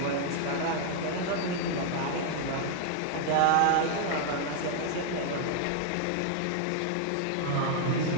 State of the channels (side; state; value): both; different; correlation 0.00